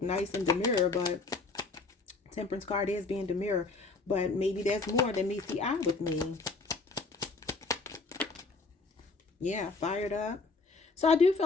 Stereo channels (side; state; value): right; quieter; 3.8 dB